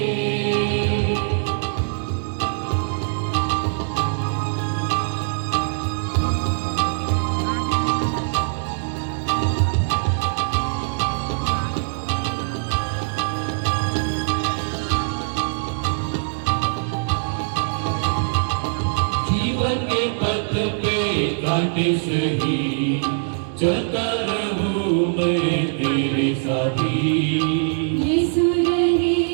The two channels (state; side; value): silent; left; digital silence